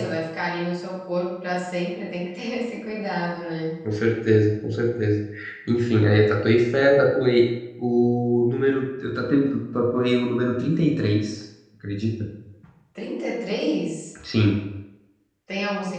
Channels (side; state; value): both; identical; correlation 1.00